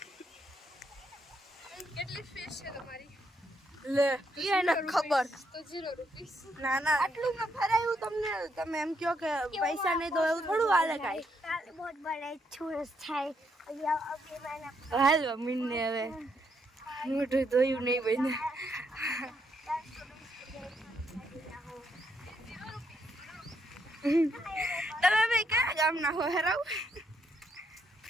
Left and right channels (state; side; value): normal; both; correlation 0.76